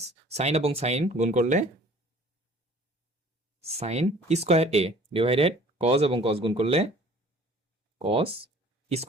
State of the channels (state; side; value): normal; both; correlation 0.50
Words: সাইন এবং সাইন গুণ করলে সাইন স্কোয়ার এ ডিভাইডেড কজ এবং কজ গুণ করলে কজ